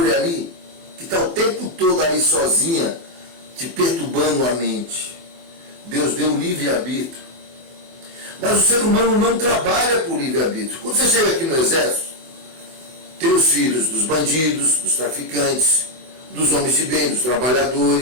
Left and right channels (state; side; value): late; left; 23 ms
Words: ali, que está o tempo todo ali sozinha, te perturbando a mente? Deus deu livre-arbítrio. Mas o ser humano não trabalha por livre-arbítrio. Quando você chega aqui no exército, tem os filhos dos bandidos, dos traficantes, dos homens de bem, dos